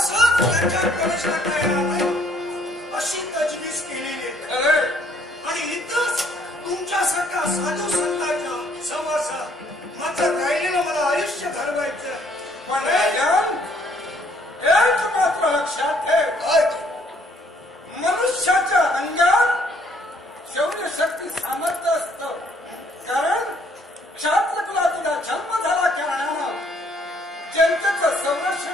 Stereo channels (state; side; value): normal; both; correlation 0.64